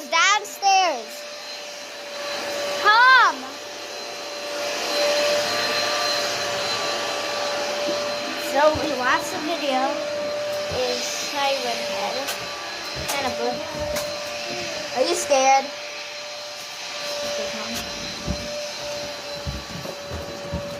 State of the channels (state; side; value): identical; both; correlation 1.00